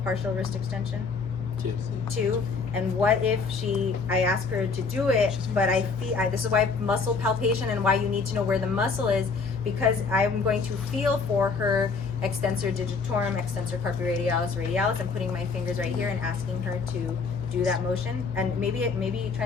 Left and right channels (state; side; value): quieter; right; 4.8 dB